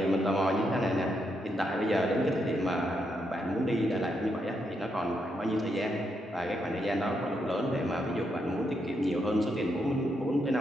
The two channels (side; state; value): both; normal; correlation 0.80